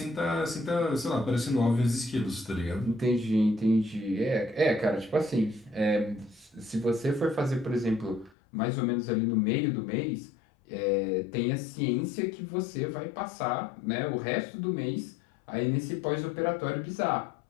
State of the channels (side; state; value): right; drops out; at 8.3 s